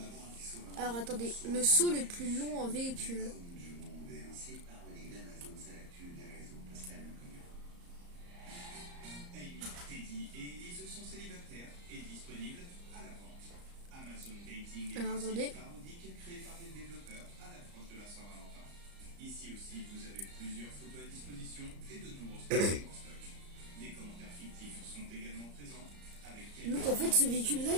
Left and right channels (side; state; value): left; late; 34 ms